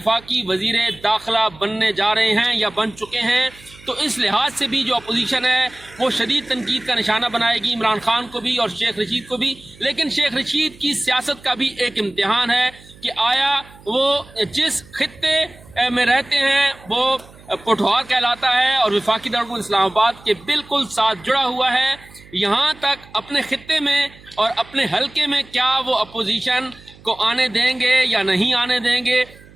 وزیر داخلہ بننے جا رہے ہیں یا بن چکے ہیں۔ تو اس لحاظ سے بھی جو اپوزیشن ہے وہ شدید تنقید کا نشانہ بنائے گی عمران خان کو بھی اور شیخ رشید کو بھی، لیکن شیخ رشید کی سیاست کا بھی ایک امتحان ہے کہ آیا وہ جس خطے میں رہتے ہیں وہ پٹھوار کہلاتا ہے، اور وفاقی دارالحکومت اسلام آباد کے بالکل ساتھ جڑا ہوا ہے، یہاں تک اپنے خطے میں اور اپنے حلقے میں کیا وہ اپوزیشن کو آنے دیں گے یا نہیں آنے دیں گے،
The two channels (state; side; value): noise; right; hum, 23 dB below the sound